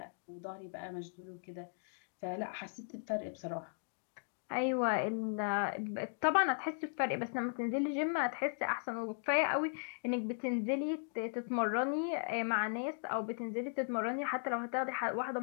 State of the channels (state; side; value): silent; right; digital silence